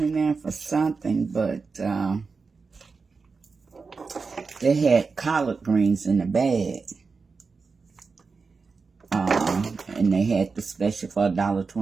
in there for something, but they had collard greens in the bag. And they had the special for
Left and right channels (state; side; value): quieter; left; 4.6 dB